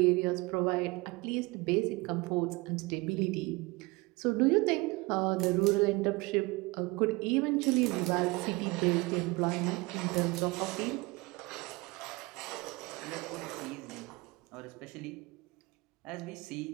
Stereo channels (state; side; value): quieter; left; 24.1 dB